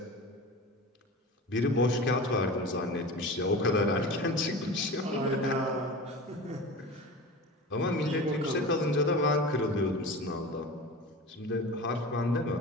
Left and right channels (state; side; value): normal; both; correlation 0.33